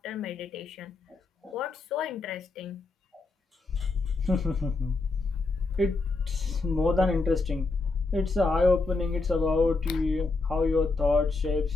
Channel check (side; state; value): right; quieter; 3.7 dB